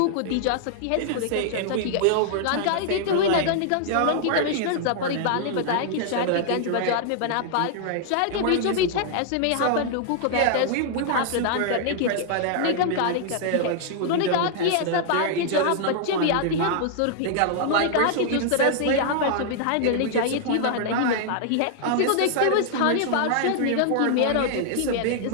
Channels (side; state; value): both; different; correlation -0.01